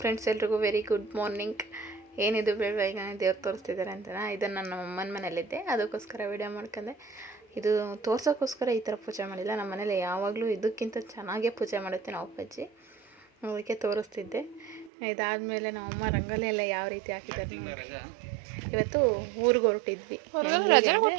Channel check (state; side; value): drops out; left; at 14.9 s